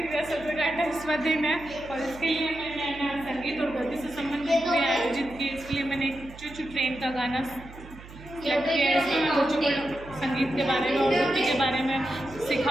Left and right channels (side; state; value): right; noise; hum, 17 dB below the sound